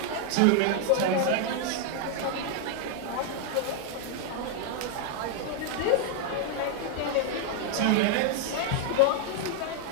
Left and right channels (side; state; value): both; different; correlation 0.00